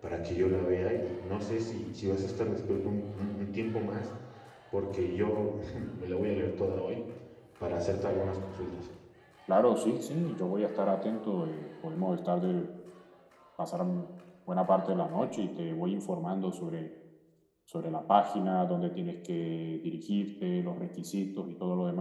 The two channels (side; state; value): both; identical; correlation 1.00